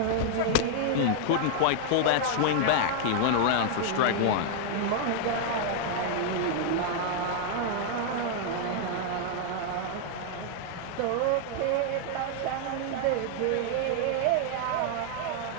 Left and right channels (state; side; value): different; both; correlation 0.00